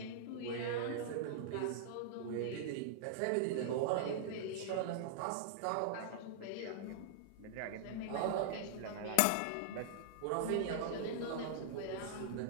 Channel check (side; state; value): both; different; correlation -0.01